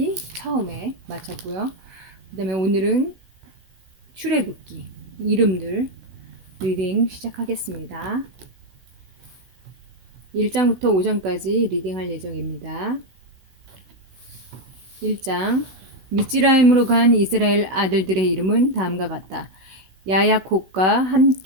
처음에 마쳤고요. 그 다음에 오늘은 출애굽기 이름들 리딩 시작하겠습니다. 1장부터 5장까지 리딩할 예정입니다. 1장 미츠라임으로 간 이스라엘 아들들의 이름은 다음과 같다. 야야콥과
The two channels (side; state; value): left; late; 16 ms